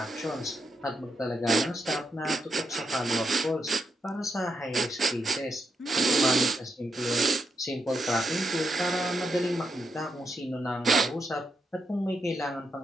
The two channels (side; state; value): both; normal; correlation 0.82